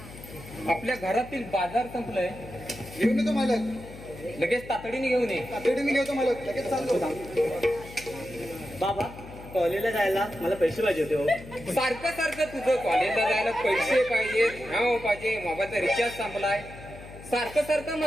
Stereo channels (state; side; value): noise; left; hum, 16 dB below the sound